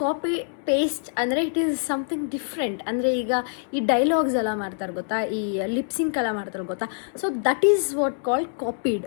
copy paste ಅಂದರೆ ಇಟ್ ಈಸ್ ಸಮಥಿಂಗ್ ಡಿಫ್ರೆಂಟ್. ಅಂದರೆ ಈಗ ಈ ಡೈಲಾಗ್ಸ್ ಎಲ್ಲ ಮಾಡ್ತಾರೆ ಗೊತ್ತಾ, ಈ ಲಿಪ್ಸಿಂಕ್ ಎಲ್ಲ ಮಾಡ್ತಾರೆ ಗೊತ್ತಾ, so that is what called copied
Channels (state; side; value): silent; right; 62 dB below the other